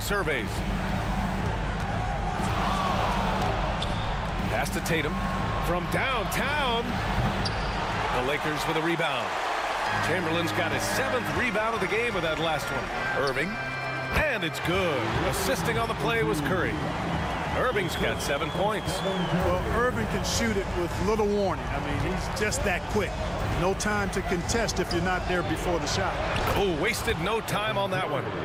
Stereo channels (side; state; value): both; identical; correlation 1.00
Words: Pass to Tatum. From downtown. The Lakers with a rebound. Chamberlain's got his 7th rebound of the game with that last one. Irving. And it's good. Assisting on the play was Curry. Irving's got 7 points. Well, Irving can shoot it with little warning. I mean, he's just that quick. No time to contest if you're not there before the shot. Oh, wasted no time on that one.